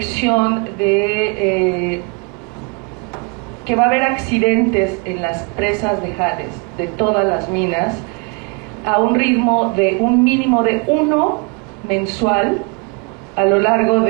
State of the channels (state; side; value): quieter; left; 32.9 dB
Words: de que va a haber accidentes en las presas de jales de todas las minas a un ritmo de un mínimo de 1 mensual a lo largo